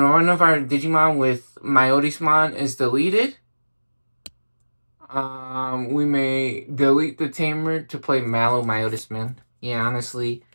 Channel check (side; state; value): both; inverted; correlation -1.00